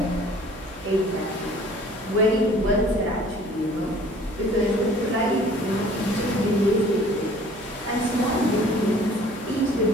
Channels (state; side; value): noise; right; hum, 22 dB below the sound